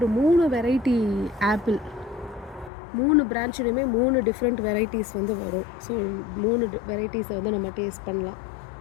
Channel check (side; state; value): right; drops out; at 2.7 s